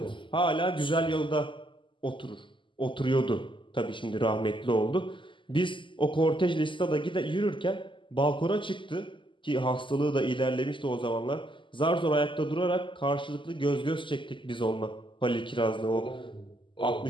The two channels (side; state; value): right; late; 0.24 ms